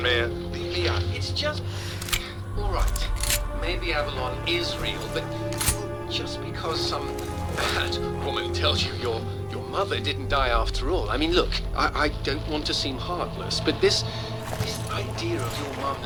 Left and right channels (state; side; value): identical; both; correlation 1.00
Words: man. Yeah, it's just... all right. Maybe Avalon is real, but just because some bad woman tells you your mother didn't die after all. I mean, look, I don't want to seem heartless, but this idea of your mum